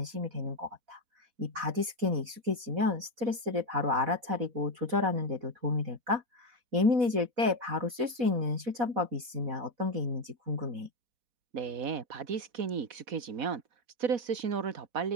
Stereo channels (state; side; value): late; left; 4.1 ms